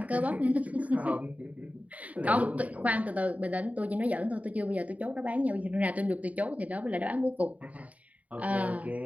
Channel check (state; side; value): late; left; 0.070 ms